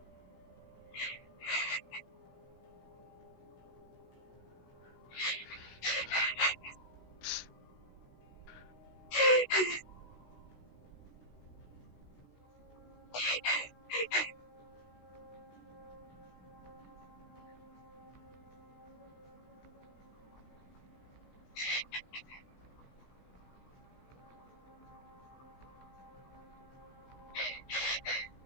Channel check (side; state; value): right; late; 16 ms